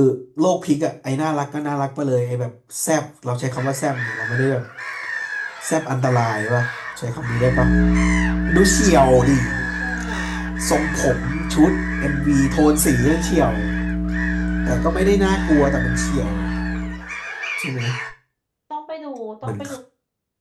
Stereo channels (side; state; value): both; identical; correlation 1.00